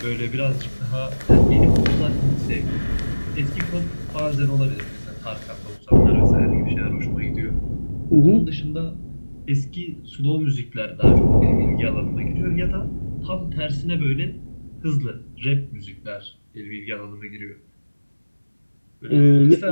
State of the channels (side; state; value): both; inverted; correlation -1.00